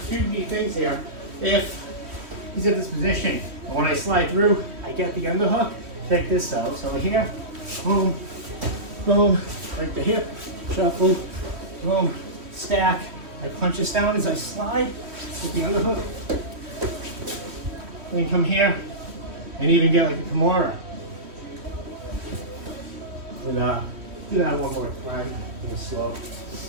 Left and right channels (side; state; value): left; late; 3.1 ms